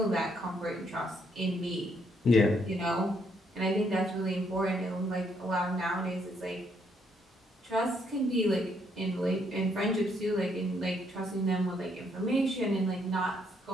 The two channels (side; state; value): both; normal; correlation 0.72